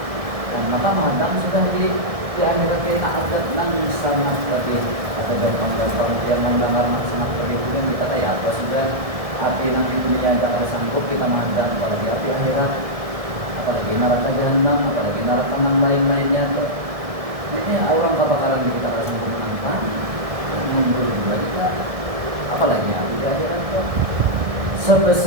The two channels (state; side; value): late; left; 1.7 ms